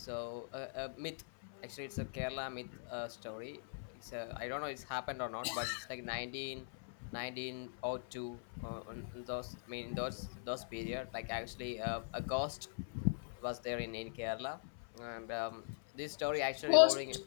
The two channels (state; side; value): silent; right; 50 dB below the other